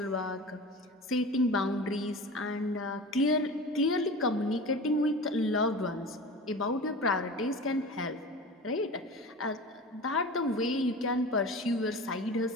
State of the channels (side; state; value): both; normal; correlation 0.34